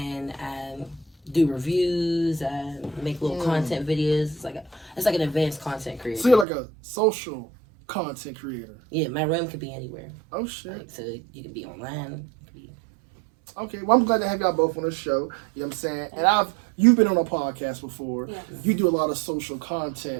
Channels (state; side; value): drops out; left; at 6.5 s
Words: I do reviews. I make little content videos. It's like an advanced content creator. So you're like a social content creator. Yeah, my room could be anywhere. Oh shit! Like, so you can be online. Okay, well I'm glad to have y'all both on the show. You know what I'm saying? And you've been on a podcast before. Yes. You do a lot of social